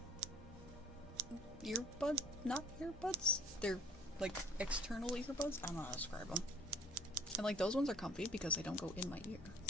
not earbuds. They're like external earbuds. I don't know how to describe them. And like those ones are comfy because they don't go in my ear.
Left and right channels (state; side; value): normal; both; correlation 0.55